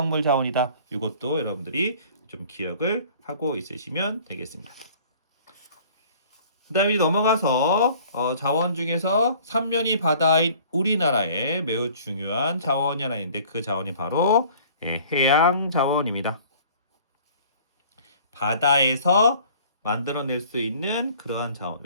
자원이다. 이것도 여러분들이 좀 기억을 하고 있으시면 되겠습니다. 그 다음에 넘어가서 자원 중에서 삼면이 바다인 우리나라의 매우 중요한 자원이 하나 있는데 그 자원이 바로 해양 자원입니다. 바다에서 만들어낼 수 있는 그러한 자원.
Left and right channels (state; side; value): inverted; both; correlation -0.51